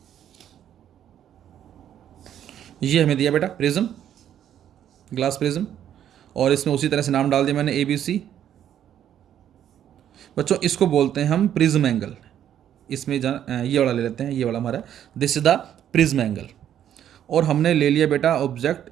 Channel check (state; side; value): quieter; left; 10.3 dB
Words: ये हमें दिया बेटा प्रिज्म, ग्लास प्रिज्म, और इसमें उसी तरह से नाम डाल दिया मैंने ABC। बच्चों इसको बोलते हैं हम प्रिज्म एंगल। इसमें ये वाला ले लेते हैं, ये वाला हमारा this is the prism angle. और हमने ले लिया बेटा ऑब्जेक्ट